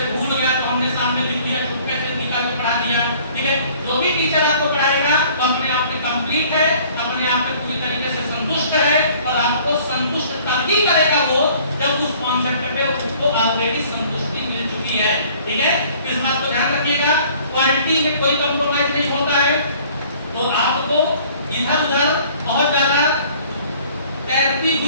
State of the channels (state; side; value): inverted; both; correlation -0.54